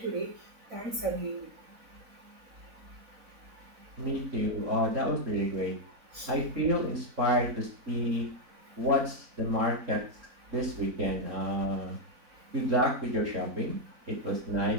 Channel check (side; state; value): left; late; 4.0 ms